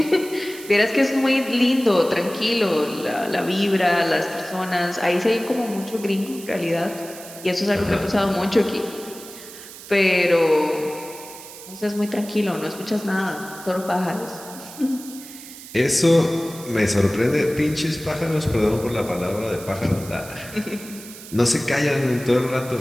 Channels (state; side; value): noise; right; hiss, 15 dB below the sound